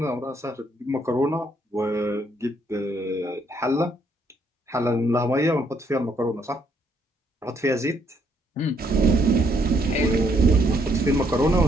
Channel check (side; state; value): both; normal; correlation 0.71